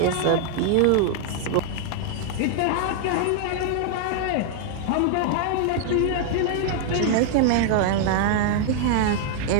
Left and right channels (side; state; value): both; different; correlation 0.00